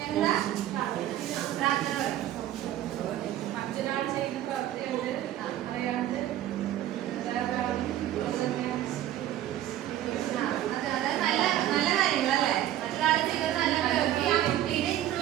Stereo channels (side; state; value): left; quieter; 12.7 dB